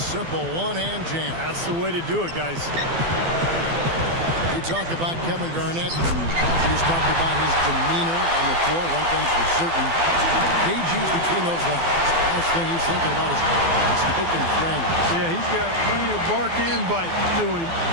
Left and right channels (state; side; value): late; left; 12 ms